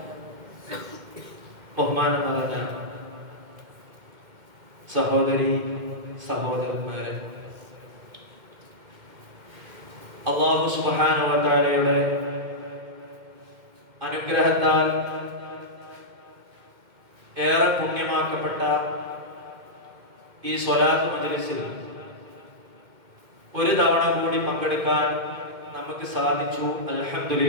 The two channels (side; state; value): left; late; 2.1 ms